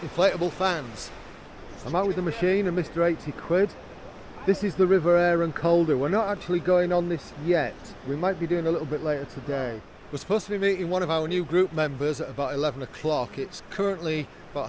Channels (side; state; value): both; identical; correlation 1.00